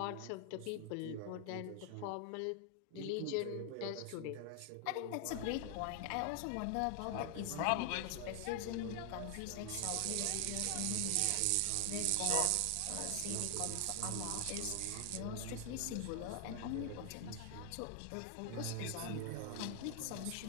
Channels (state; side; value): different; both; correlation 0.00